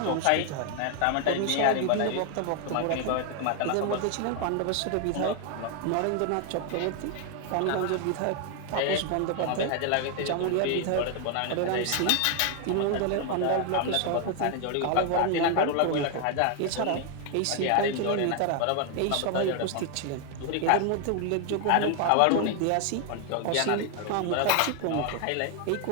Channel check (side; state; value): both; different; correlation 0.00